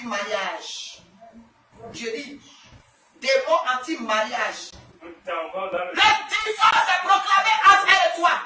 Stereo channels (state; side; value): identical; both; correlation 1.00